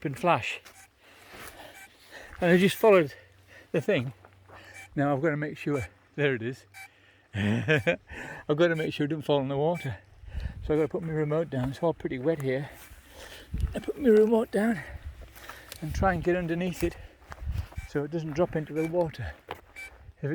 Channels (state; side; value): identical; both; correlation 1.00